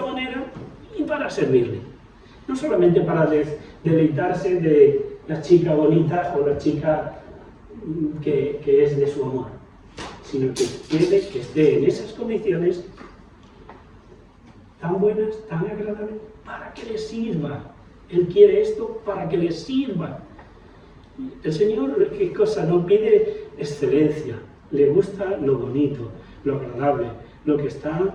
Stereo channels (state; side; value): identical; both; correlation 1.00